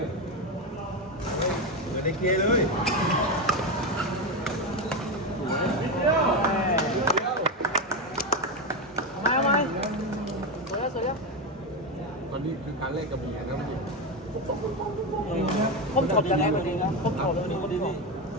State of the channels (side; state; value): both; normal; correlation 0.13